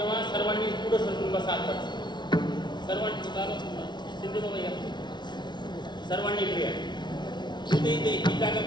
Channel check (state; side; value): late; right; 0.21 ms